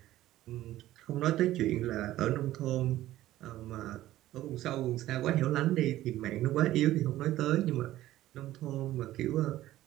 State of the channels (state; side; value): quieter; left; 14.8 dB